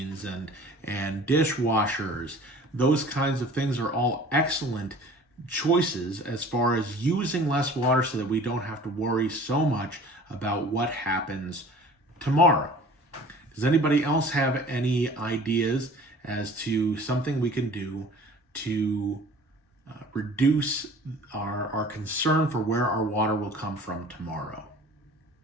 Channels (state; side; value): normal; both; correlation 0.46